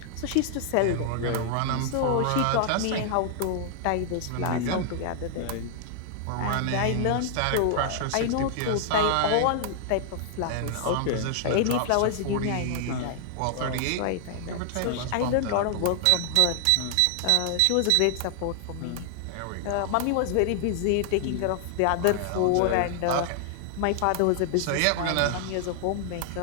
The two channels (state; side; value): different; both; correlation 0.00